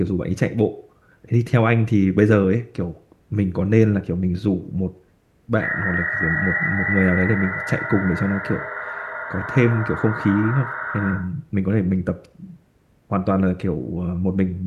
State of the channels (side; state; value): both; identical; correlation 1.00